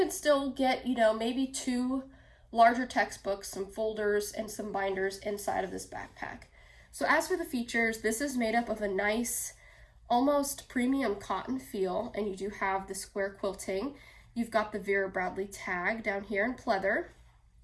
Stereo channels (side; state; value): both; identical; correlation 1.00